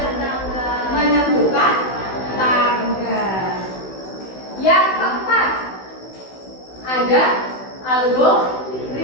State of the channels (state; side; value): late; right; 16 ms